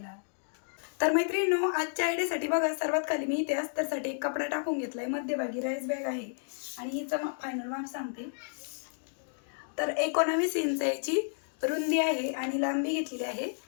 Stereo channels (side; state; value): right; silent; digital silence